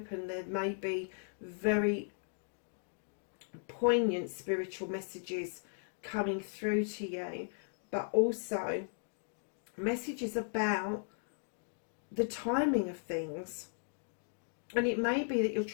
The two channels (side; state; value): right; silent; digital silence